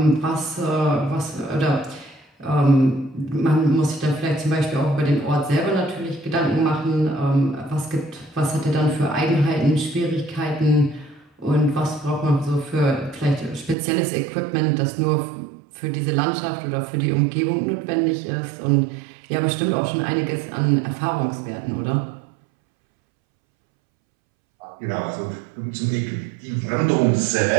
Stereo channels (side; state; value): left; drops out; at 13.8 s